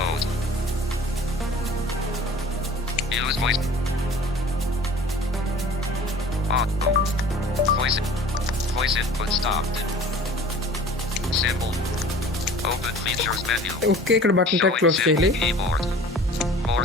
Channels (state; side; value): normal; both; correlation 0.45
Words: Use voice. Auto. Voice input stopped. Symbol. Open features menu. Okay, ఇక్కడ button tag close చేయాలి. Keyboard. More